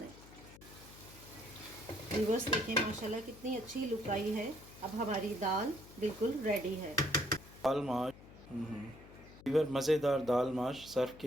व्यूअर्स देखें माशाल्लाह कितनी अच्छी लुक आई है। अब हमारी दाल बिल्कुल रेडी है। दाल माश वीवर मज़ेदार दाल माश सर्व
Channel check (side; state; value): left; noise; hum, 19 dB below the sound